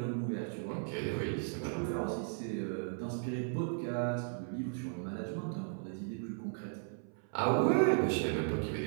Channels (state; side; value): silent; left; 54 dB below the other